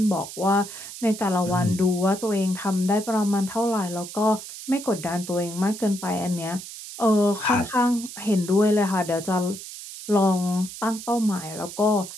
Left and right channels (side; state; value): right; noise; hiss, 12 dB below the sound